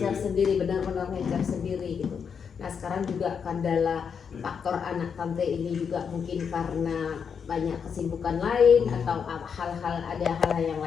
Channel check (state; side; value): quieter; right; 6.7 dB